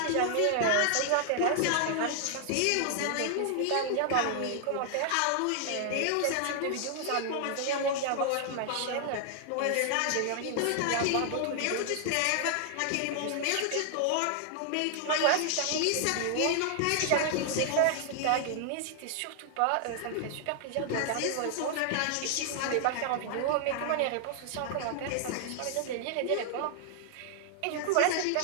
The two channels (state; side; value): different; both; correlation 0.00